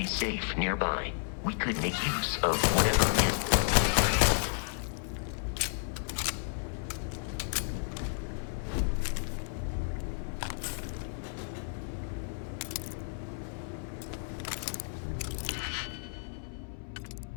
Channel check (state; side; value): silent; right; 56 dB below the other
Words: safe nearby. We could make use of whatever is.